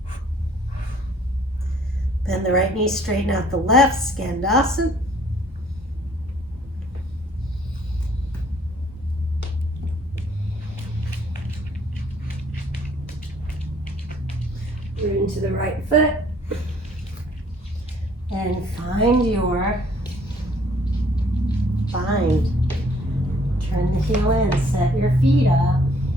Bend the right knee, straighten out the left, skandasana. Root into the right foot. And find your bind. Turn the heel in, set your feet up.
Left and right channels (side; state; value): both; normal; correlation 0.60